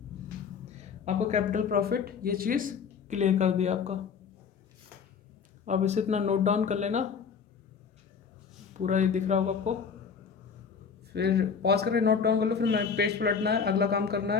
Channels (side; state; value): right; quieter; 6.2 dB